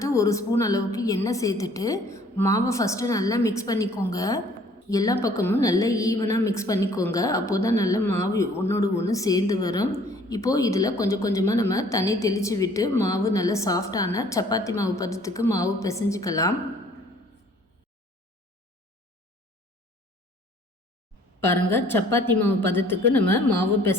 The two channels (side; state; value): both; normal; correlation 0.56